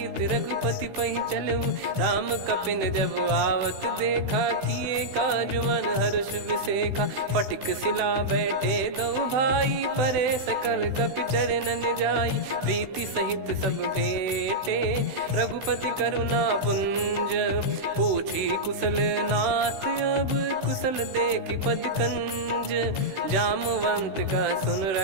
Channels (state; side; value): late; left; 16 ms